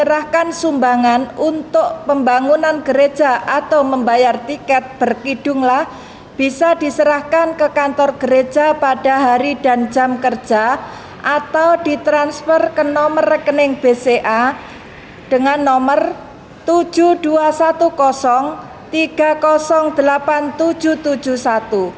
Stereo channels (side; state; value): both; identical; correlation 1.00